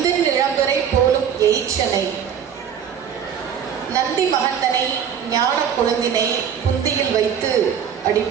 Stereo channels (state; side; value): quieter; left; 8.2 dB